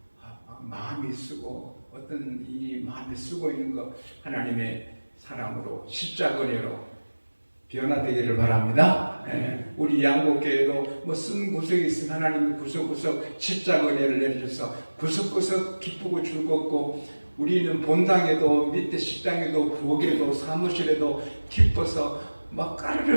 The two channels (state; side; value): inverted; both; correlation -1.00